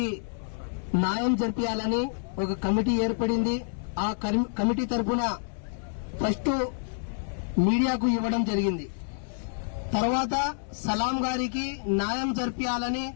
న్యాయం జరిపించాలని ఒక కమిటీ ఏర్పడింది. ఆ కమిటీ తరఫున ఫస్ట్ మీడియాకు ఇవ్వడం జరిగింది. తర్వాత సలాం గారికి న్యాయం జరిపించాలని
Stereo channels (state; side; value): silent; right; 59 dB below the other